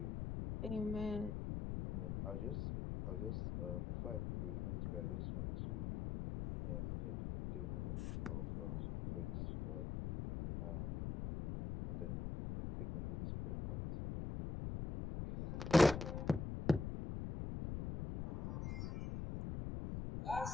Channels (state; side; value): noise; left; rumble, 3 dB below the sound